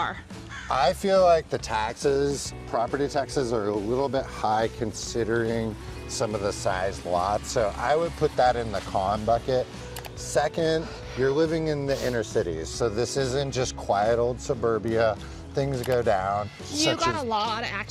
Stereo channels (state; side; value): identical; both; correlation 1.00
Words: I feel like the taxes, property taxes, are a little bit high considering some of the size lots. So I would put that in the con bucket. Second, you're living in the inner cities. So this isn't just quiet old suburbia. Things go down. You got a lot of